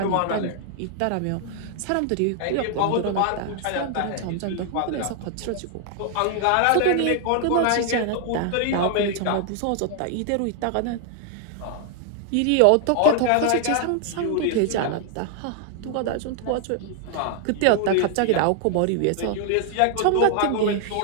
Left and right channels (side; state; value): both; different; correlation 0.00